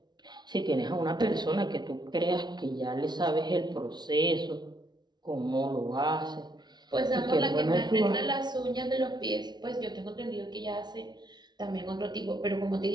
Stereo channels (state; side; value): late; left; 0.20 ms